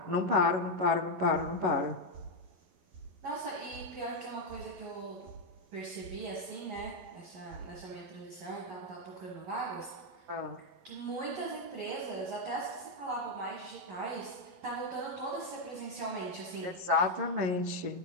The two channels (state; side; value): late; left; 11 ms